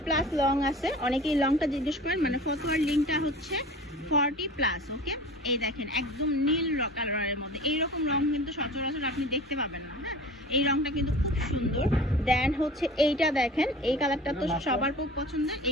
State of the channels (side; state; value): both; normal; correlation 0.39